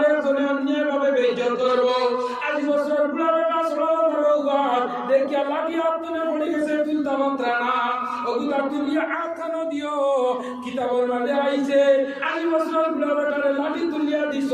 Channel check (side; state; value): both; identical; correlation 1.00